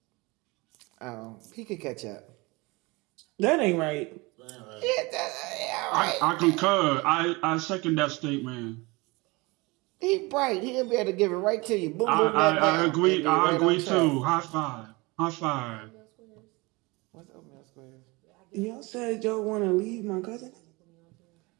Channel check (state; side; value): quieter; left; 24.9 dB